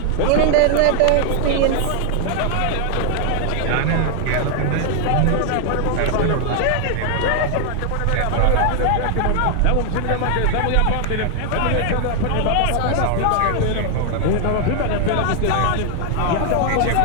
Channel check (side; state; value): both; different; correlation 0.00